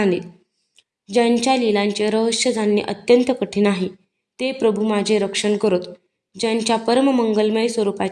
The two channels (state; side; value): identical; both; correlation 1.00